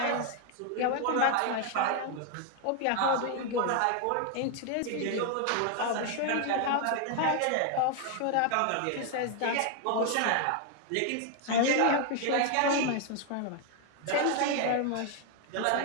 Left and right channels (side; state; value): both; different; correlation 0.01